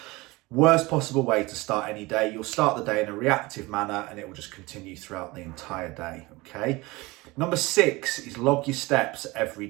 Worst possible way to start any day. You'll start the day in a reactive manner and it will just continue throughout the entire day, okay? Number 6 is log your steps every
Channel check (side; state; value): left; quieter; 22.5 dB